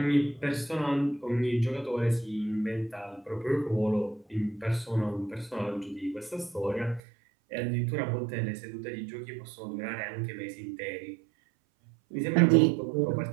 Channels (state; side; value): drops out; left; at 7.0 s